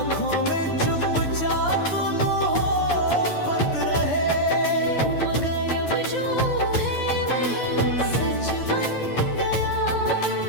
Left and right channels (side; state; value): right; late; 9.9 ms